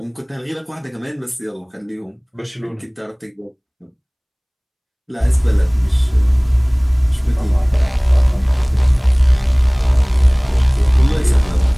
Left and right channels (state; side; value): identical; both; correlation 1.00